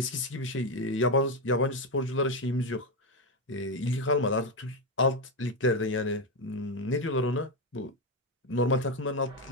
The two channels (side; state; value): both; normal; correlation 0.09